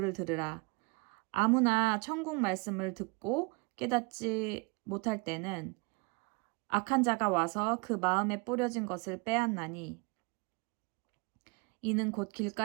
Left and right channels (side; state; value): left; quieter; 28.8 dB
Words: 들으라. 아무나 천국 말씀을 듣고 깨닫지 못할 때는 악한 자가 와서 그 마음에 뿌려진 것을 빼앗나니 이는 곧